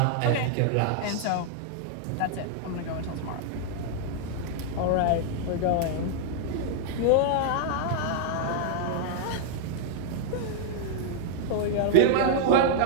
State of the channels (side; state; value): both; different; correlation -0.01